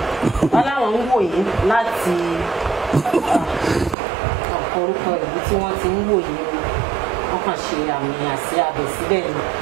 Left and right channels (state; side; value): drops out; left; at 4.0 s